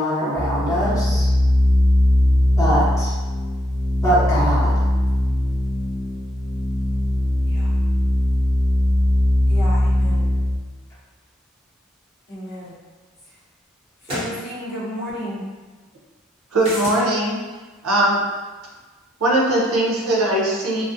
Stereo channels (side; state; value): both; normal; correlation 0.76